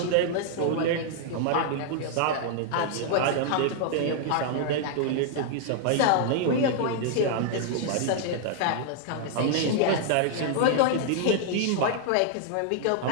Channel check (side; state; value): both; different; correlation -0.01